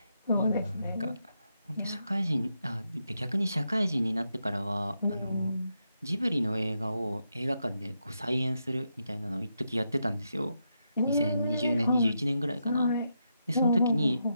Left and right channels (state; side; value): inverted; both; correlation -0.83